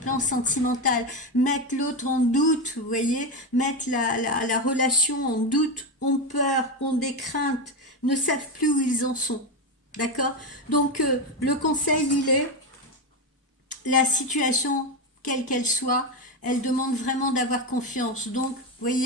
sentimental, mettent l'autre en doute, vous voyez, mettent la relation en doute, ont peur, ont des craintes, ne savent plus où ils en sont. D'accord? Donc, le conseil, il est la situation, quelle qu'elle soit, elle demande vraiment d'avoir confiance. Donc, vous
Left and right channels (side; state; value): both; normal; correlation 0.12